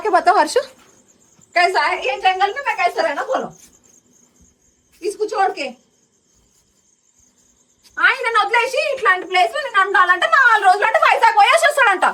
बताओ हर्ष कैसा है ये जंगल में मैं कैसा रहना बोलो इसको छोड़ के ఆయన వదిలేసి ఇట్లాంటి ప్లేస్ లో నేను ఉండాలంటే 4 రోజులు అంటే వైజాగ్ పోయేసి వస్తాడంట.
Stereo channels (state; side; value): identical; both; correlation 1.00